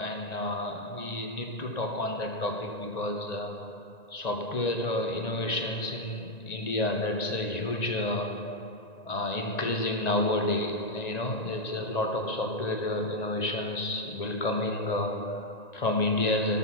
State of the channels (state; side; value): late; right; 1.9 ms